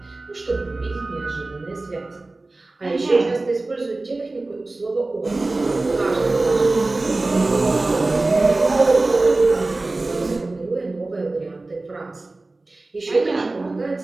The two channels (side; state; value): left; quieter; 3.1 dB